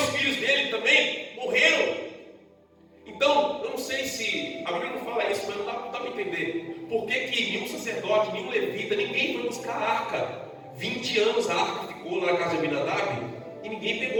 filhos dele também morreram. Então, eu não sei se, a Bíblia não fala isso, mas não dá para entender. Por que nenhum sacerdote, nenhum levita, ninguém foi buscar a arca? 20 anos a arca ficou lá na casa de Abinadab e ninguém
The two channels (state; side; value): identical; both; correlation 1.00